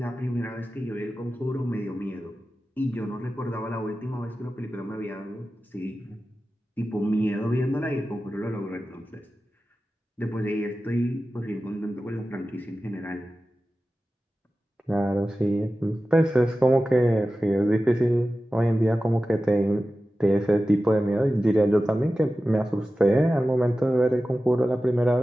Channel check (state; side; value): normal; both; correlation 0.94